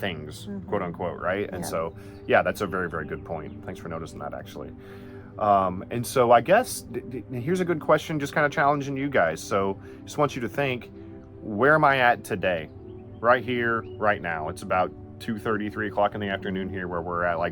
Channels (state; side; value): identical; both; correlation 1.00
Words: quote unquote, right? And so, that's a very, very good point. Thanks for noticing that, actually. And so I guess here's a good question, just kind of challenging you guys. So just want you to think, where am I at today? Right here, right now. It's about 2:30, 3 o'clock in the afternoon here where we're at.